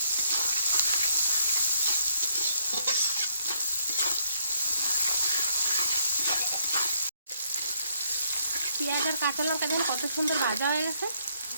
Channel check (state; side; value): inverted; both; correlation -0.71